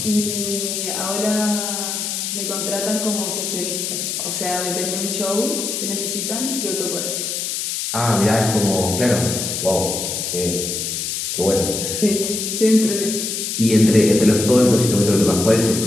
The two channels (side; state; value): left; noise; hiss, 3 dB below the sound